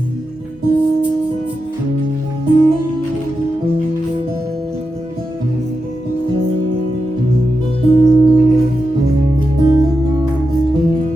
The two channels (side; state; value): right; noise; hum, 28 dB below the sound